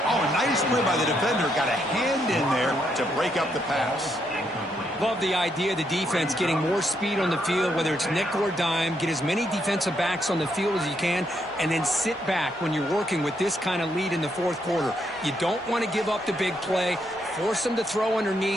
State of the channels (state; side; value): normal; both; correlation 0.77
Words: Oh, a nice play by the defender. Got a hand in there to break up the pass. Love the idea of the defense getting more speed on the field, whether it's nickel or dime. Get as many defensive backs on the field as you can, and then sit back when you're working with this kind of lead in the fourth quarter. You don't want to give up the big play. Force them to throw